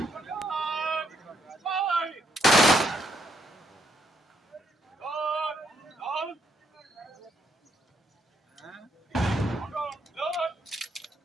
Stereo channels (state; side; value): normal; both; correlation 0.75